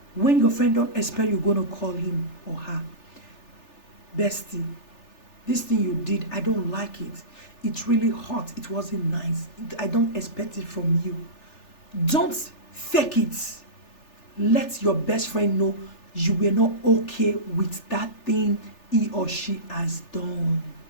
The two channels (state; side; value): late; right; 3.4 ms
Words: When your friend don't expect you're going to call him or her, bestie, this thing you did, I don't like it. It's really hot. It wasn't nice. I don't expect it from you. Don't fake it. Let your best friend know you were not okay with that thing he or she has done.